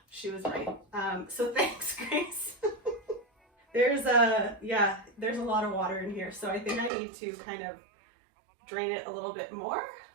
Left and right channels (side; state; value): left; drops out; at 6.9 s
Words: she was right. So thanks, Grace. There's a lot of water in here, so I think I need to kind of drain it a little bit more.